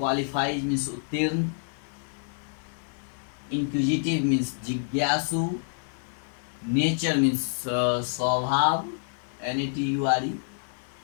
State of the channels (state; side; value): silent; right; 55 dB below the other